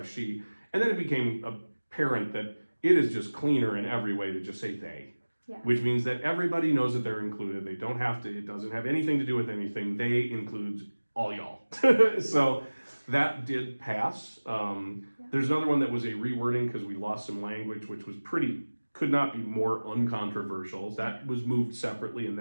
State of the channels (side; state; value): both; inverted; correlation -1.00